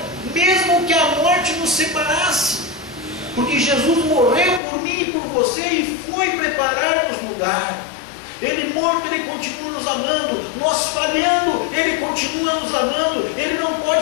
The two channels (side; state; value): right; drops out; at 4.6 s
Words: mesmo que a morte nos separasse. Porque Jesus morreu por mim e por você e foi preparar-nos lugar. Ele morto, Ele continua nos amando. Nós falhando, Ele continua nos amando. Ele não